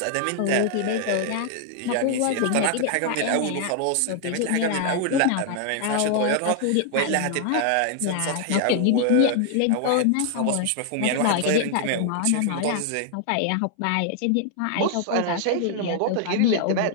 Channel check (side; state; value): both; different; correlation 0.00